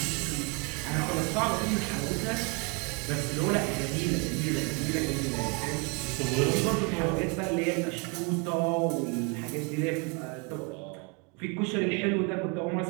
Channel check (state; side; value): quieter; left; 32.3 dB